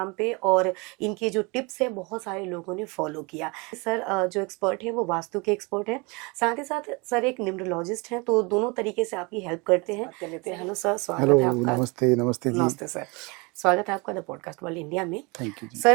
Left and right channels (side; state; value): left; quieter; 28.2 dB